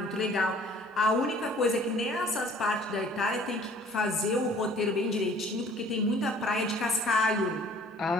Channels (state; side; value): normal; both; correlation 0.53